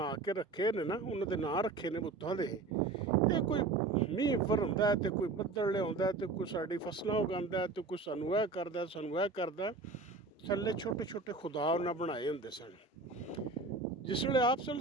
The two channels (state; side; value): quieter; left; 3.7 dB